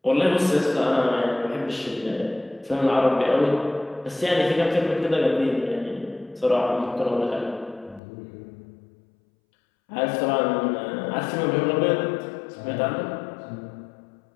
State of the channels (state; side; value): drops out; right; at 8.0 s